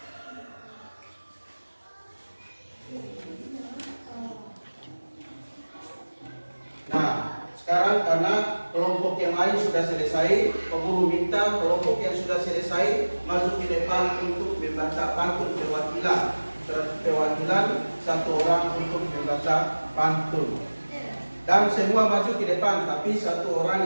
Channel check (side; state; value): both; inverted; correlation -1.00